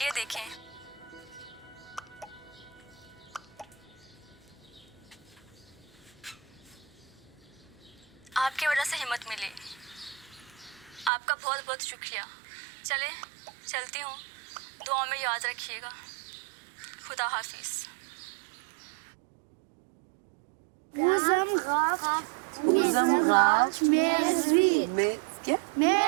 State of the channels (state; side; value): drops out; left; at 11.1 s